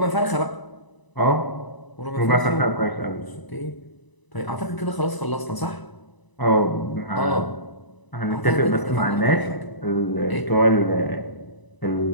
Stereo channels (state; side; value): late; right; 1.0 ms